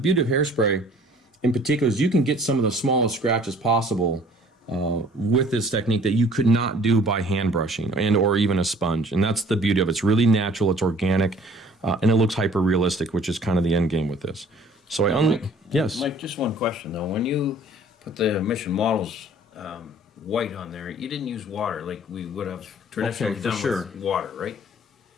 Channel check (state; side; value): normal; both; correlation 0.53